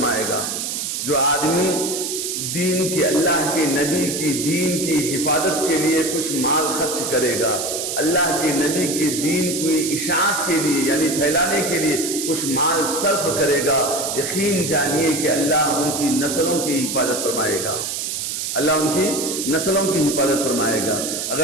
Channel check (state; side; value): noise; right; hiss, 3 dB below the sound